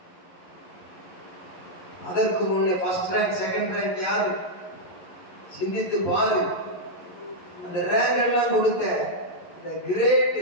அதற்கு முன்னே ஃபர்ஸ்ட் ரேங்க், செகண்ட் ரேங்க் யாரு? சிந்தித்து பாரு. அந்த ரேங்க் எல்லாம் கொடுத்த the great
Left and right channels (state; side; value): late; right; 11 ms